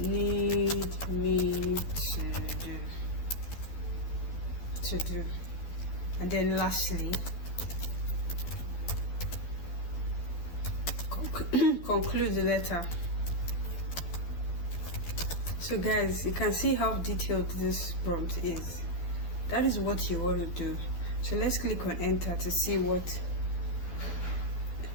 me to do. And then lastly, conclude the letter. So guys, you can see how detailed this prompt is. That is what you want to do. So let's click on enter to see what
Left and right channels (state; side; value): late; right; 12 ms